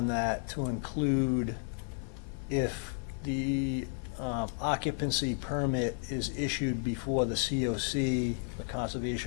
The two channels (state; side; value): silent; right; 56 dB below the other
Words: that to include if the occupancy permit is issued before the COC, the